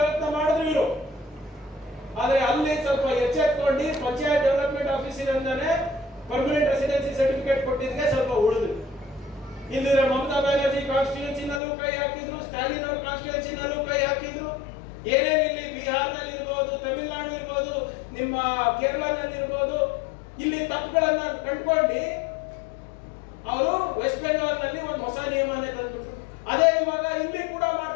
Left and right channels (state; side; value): drops out; right; at 11.6 s